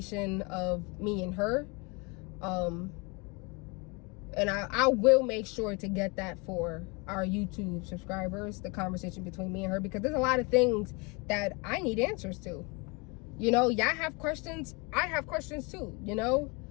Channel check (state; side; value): quieter; right; 29.4 dB